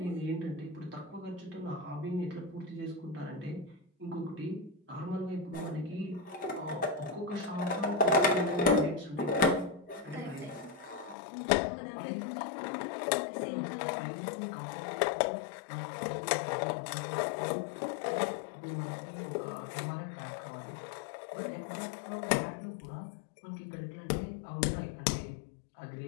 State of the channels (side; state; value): right; drops out; at 11.2 s